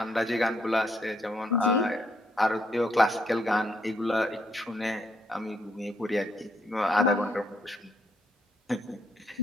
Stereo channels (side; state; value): both; normal; correlation 0.74